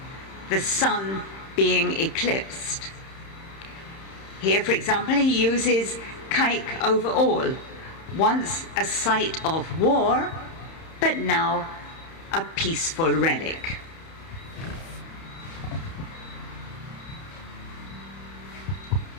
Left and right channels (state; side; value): late; right; 31 ms